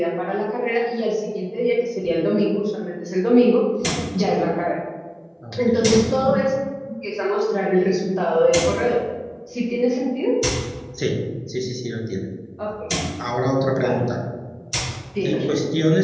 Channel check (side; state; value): both; identical; correlation 1.00